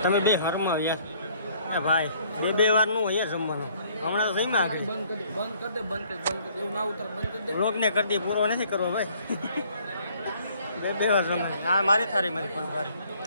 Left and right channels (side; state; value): both; inverted; correlation -0.61